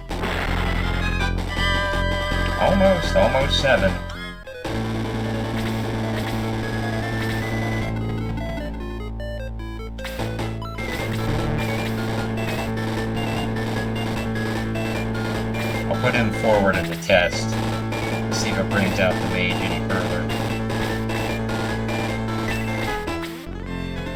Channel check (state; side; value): identical; both; correlation 1.00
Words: Almost 7. I'll put him forward at the test. See if it brings out the mage any further.